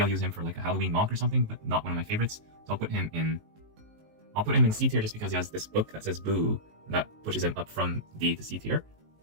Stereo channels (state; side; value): late; left; 19 ms